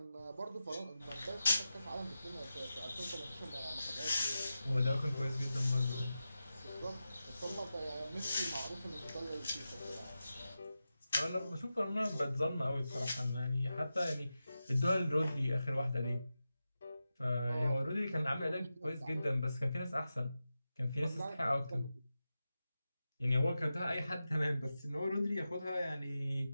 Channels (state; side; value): inverted; both; correlation -0.92